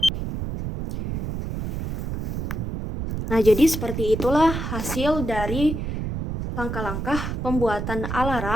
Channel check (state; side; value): noise; right; rumble, 4 dB below the sound